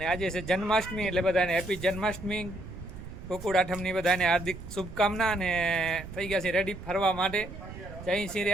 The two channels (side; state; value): right; noise; rumble, 12 dB below the sound